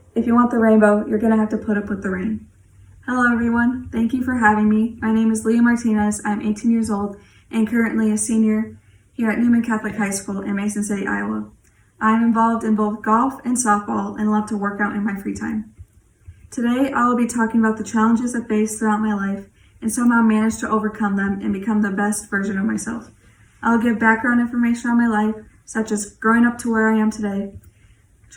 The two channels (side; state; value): both; identical; correlation 1.00